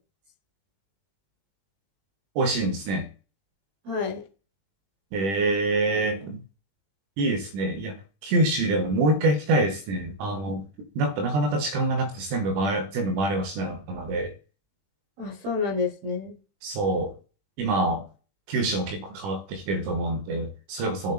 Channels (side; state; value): left; late; 20 ms